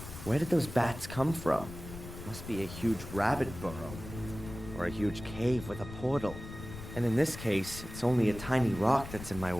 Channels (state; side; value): noise; left; rumble, 12 dB below the sound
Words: Where did those bats come from? Must be a huge rabbit burrow. Or a huge cave with a portal. And in this case, it's only a tiny rock that's in my